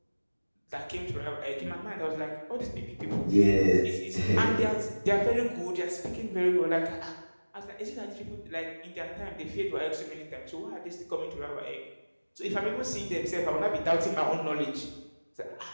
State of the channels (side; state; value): both; inverted; correlation -1.00